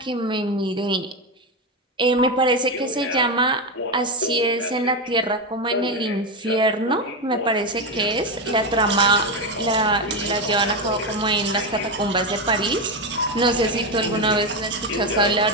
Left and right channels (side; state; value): both; normal; correlation 0.11